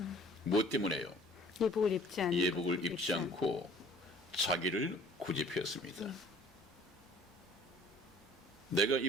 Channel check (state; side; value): normal; both; correlation 0.51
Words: 무엇 때문에요? 예복을 입지 않고 예복을 입지 않고 자기를 고집했습니다. 내가